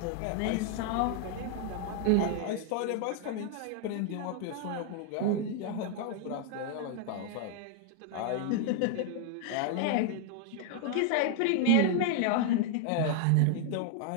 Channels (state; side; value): different; both; correlation 0.00